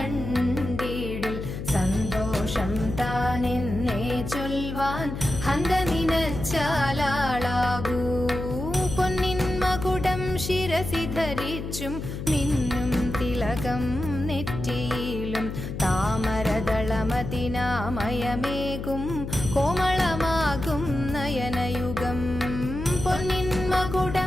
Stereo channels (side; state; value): left; noise; hum, 7 dB below the sound